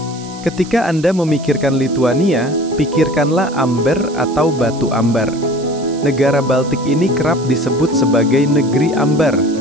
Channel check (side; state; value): right; noise; hiss, 19 dB below the sound